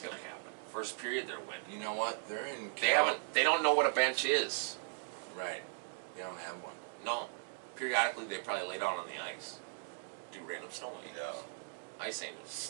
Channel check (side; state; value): left; silent; digital silence